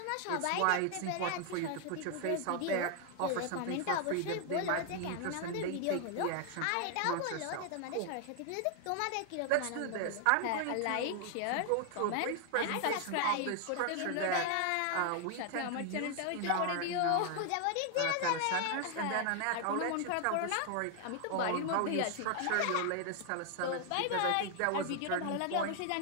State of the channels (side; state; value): both; different; correlation 0.00